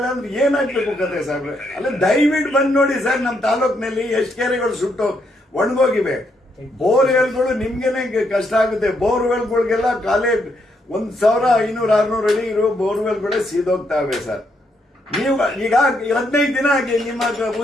ಅಂದ್ರೆ ಏನಾಗ್ಬೇಕು ಕತೆ ಸಾಹೇಬ್ರೆ? ಅಲ್ಲ ದಯವಿಟ್ಟು ಬಂದ್ ನೋಡಿ ಸರ್, ನಮ್ಮ ತಾಲೂಕಿನಲ್ಲಿ ಎಷ್ಟು ಕೆರೆಗಳು ಸುಟ್ಟು ಒಣಗೋಗಿವೆ. ಬೋರ್ವೆಲ್ಗಳು ನಿಮ್ಗೆನೆ ಕಷ್ಟ ಆಗುತ್ತೆ. ಬೋರ್ವೆಲ್ಗಳಿಗೆಲ್ಲ ಕಾಲೇ 1,500-600 ಅಡಿ ಇರೋ ಬೋರ್ವೆಲ್ಗಳೇ ಸೀದೋಗ್ತಾವೆ ಸರ್. ನೀವು ಈಗ 15 ದಿನ ಆಗಿ ನಿಮ್ಮ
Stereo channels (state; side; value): normal; both; correlation 0.76